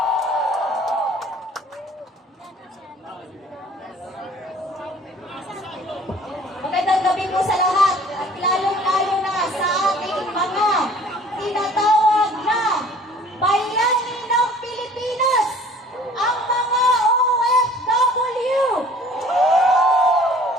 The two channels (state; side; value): normal; both; correlation 0.51